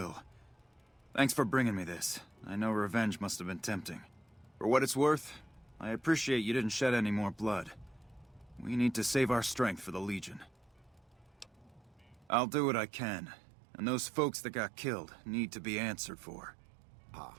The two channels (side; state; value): left; drops out; at 12.2 s